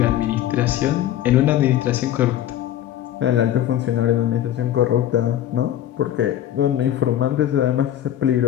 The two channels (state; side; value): quieter; right; 11.8 dB